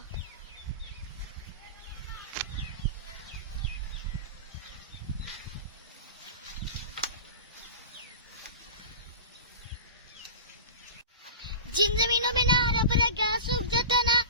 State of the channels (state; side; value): inverted; both; correlation -0.31